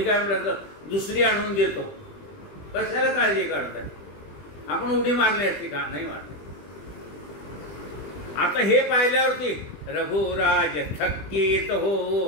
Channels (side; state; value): right; late; 20 ms